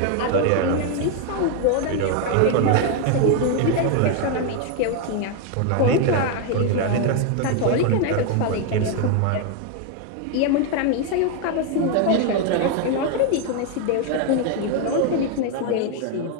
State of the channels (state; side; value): different; both; correlation 0.01